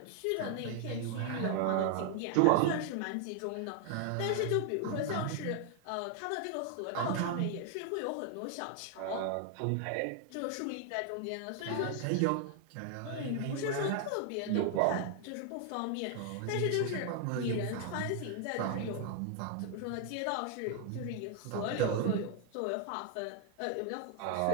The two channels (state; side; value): different; both; correlation 0.00